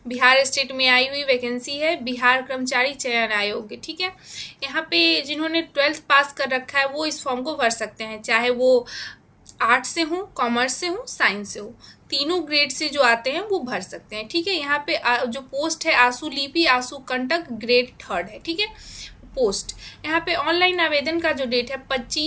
बिहार स्टेट में आई हुई वैकेंसी है, बिहार कर्मचारी चयन आयोग, ठीक है। यहाँ पे जिन्होंने 12th पास कर रखा है वो इस फॉर्म को भर सकते हैं, चाहे वो आर्ट्स से हो, कॉमर्स से हो, साइंस से हो। तीनों ग्रेड से जो आते हैं वो भर सकते हैं, ठीक है। यहाँ पे जो पोस्ट है आंसू लिपि आंसू कंटक ग्रेड 3rd है, ठीक है। पोस्ट यहाँ पे ऑनलाइन आवेदन का जो डेट है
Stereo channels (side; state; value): both; identical; correlation 1.00